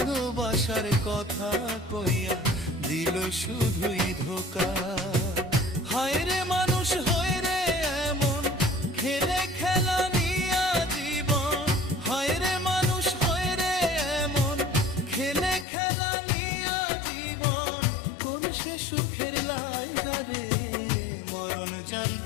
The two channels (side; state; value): right; drops out; at 15.7 s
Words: কথা কইয়া দিল শুধুই ধোকা। হায় রে মানুষ হয়ে রে এমন খেলে খেলা নিয়া জীবন, হায় রে মানুষ হয়ে রে এমন খেলে খেলা নিয়া জীবন। কোন সে সুখের লাইগা রে মরণ